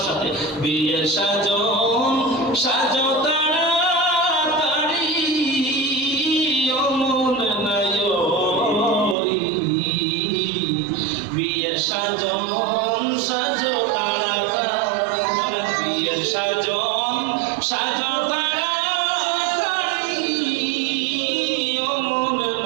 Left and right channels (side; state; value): left; drops out; at 9.2 s